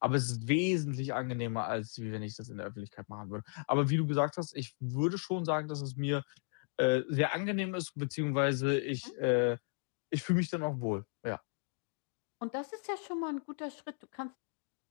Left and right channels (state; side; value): silent; right; 54 dB below the other